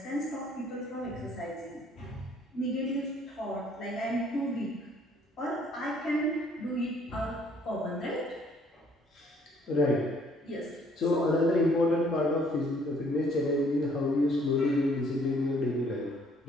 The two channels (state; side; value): normal; both; correlation 0.61